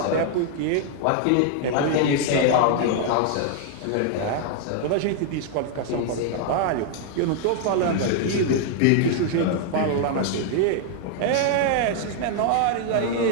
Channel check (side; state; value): both; different; correlation 0.00